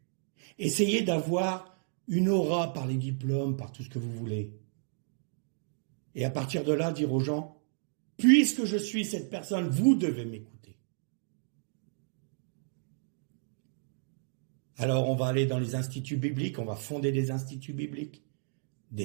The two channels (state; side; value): silent; left; digital silence